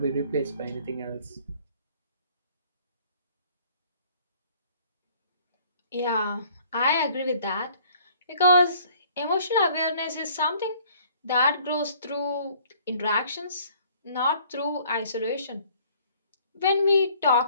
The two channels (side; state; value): both; inverted; correlation -0.57